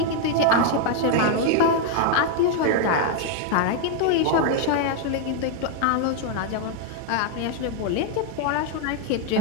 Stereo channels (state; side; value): different; both; correlation 0.01